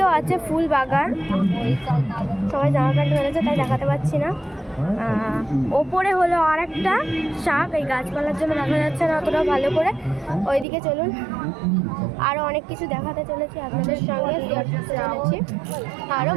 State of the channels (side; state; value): left; drops out; at 10.7 s